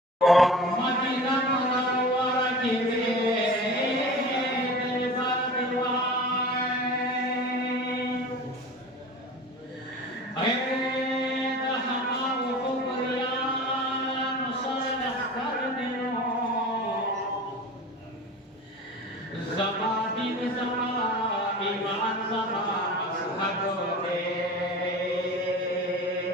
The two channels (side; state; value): both; normal; correlation 0.36